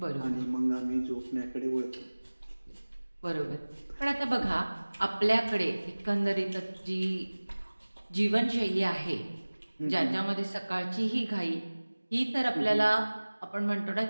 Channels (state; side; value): inverted; both; correlation -1.00